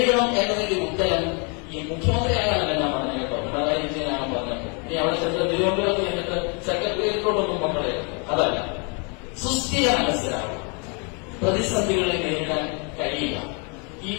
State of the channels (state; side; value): quieter; right; 34.9 dB